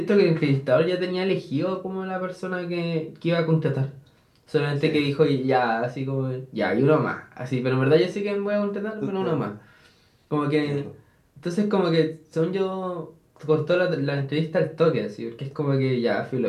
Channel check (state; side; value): identical; both; correlation 1.00